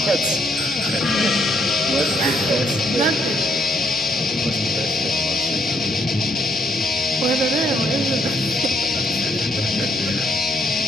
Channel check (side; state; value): both; normal; correlation 0.71